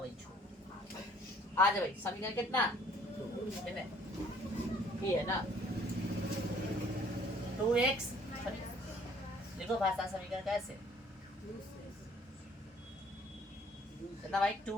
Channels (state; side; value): normal; both; correlation 0.58